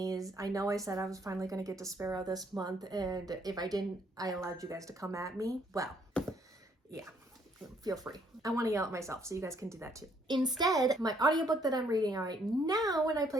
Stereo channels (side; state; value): both; normal; correlation 0.67